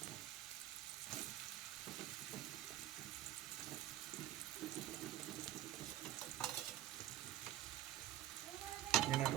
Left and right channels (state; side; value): quieter; left; 13.1 dB